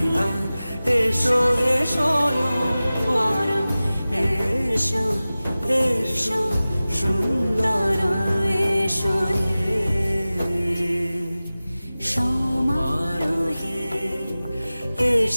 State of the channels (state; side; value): inverted; both; correlation -0.97